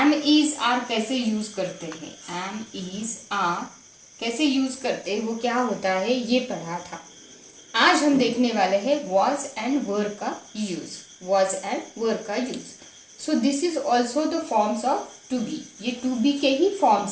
is are कैसे use करते हैं, am is are कैसे use करते हैं, वो क्या होता है ये पढ़ा था. आज हम देखने वाले हैं was and were का यूज. was and were का use. So this is also the forms of to be. ये टू बी के ही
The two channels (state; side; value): identical; both; correlation 1.00